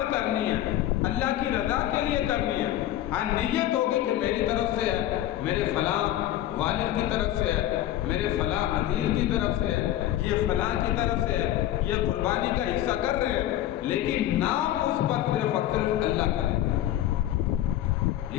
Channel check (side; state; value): right; quieter; 13.2 dB